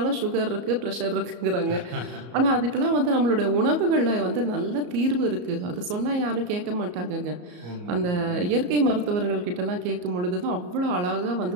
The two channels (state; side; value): late; left; 34 ms